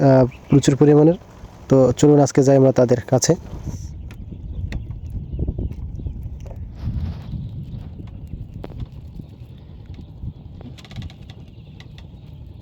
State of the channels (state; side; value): identical; both; correlation 1.00